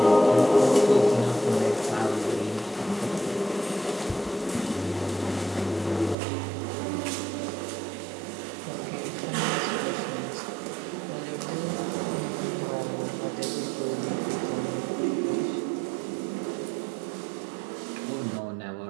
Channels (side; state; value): left; drops out; at 6.2 s